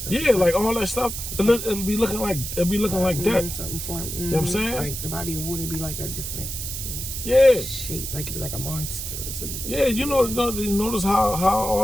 Yeah, like all that stuff. It'll be looking like that. Something formed. You know what I'm saying? Like the body of water be like a different shape. Like it'd be like a monster or something. Yeah, you notice how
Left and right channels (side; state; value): right; noise; hiss, 6 dB below the sound